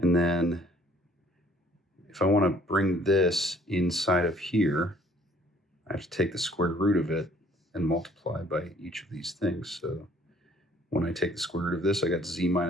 then if I want to bring this inside of here, I have to take the square root of it and multiply by each of these things. So when I take the square root of this, I got z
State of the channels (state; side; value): normal; both; correlation 0.59